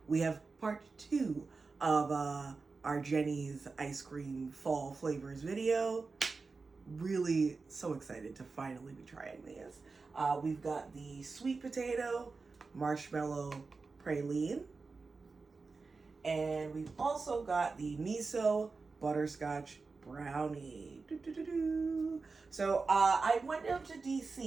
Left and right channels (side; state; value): left; quieter; 4.2 dB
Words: we have part 2 of our Jeni's ice cream fall flavors video. Really so excited to finally be trying these. We've got the Sweet Potato Marshmallow Praline, and we've also got the Miso Butterscotch Brownie. So I went down to